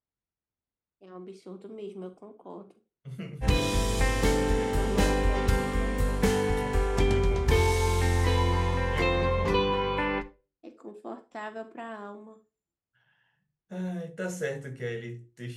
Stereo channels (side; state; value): both; identical; correlation 1.00